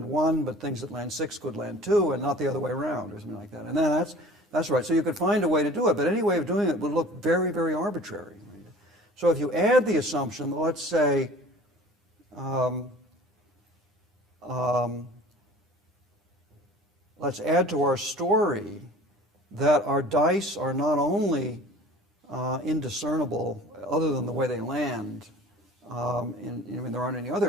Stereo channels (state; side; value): normal; both; correlation 0.45